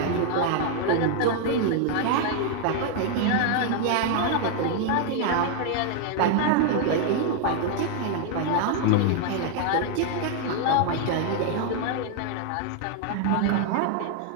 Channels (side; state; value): both; different; correlation 0.00